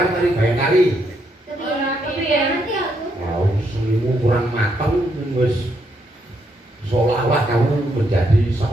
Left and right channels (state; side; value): normal; both; correlation 0.76